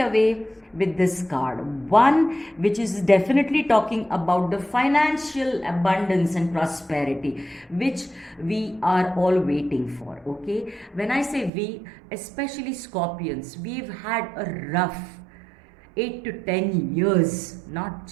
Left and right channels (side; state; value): left; drops out; at 11.5 s